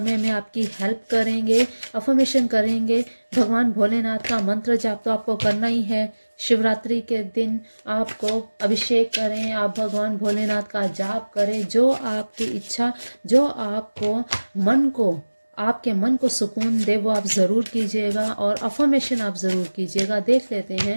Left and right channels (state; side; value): inverted; both; correlation -1.00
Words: में आपकी हेल्प करेंगे। अफर्मेशन करेंगे, भगवान भोलेनाथ का मंत्र जाप तो आपको करना ही है। शिवरात्रि के दिन आपको अभिषेक करें, आप भगवान भोलेनाथ का जाप करें, जो आपकी इच्छा, जो आपको आपके मन को सुकून दे वो आप ज़रूर कीजिएगा, और अफर्मेशन आप ज़रूर कीजिएगा। देख लेते